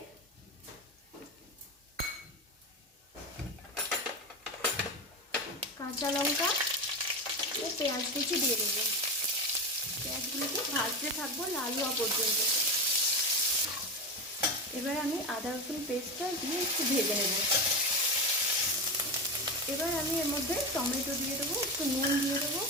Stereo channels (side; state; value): both; normal; correlation 0.18